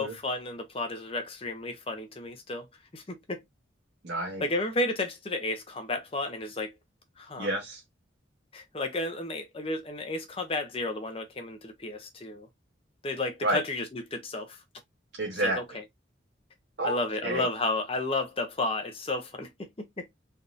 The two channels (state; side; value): normal; both; correlation 0.04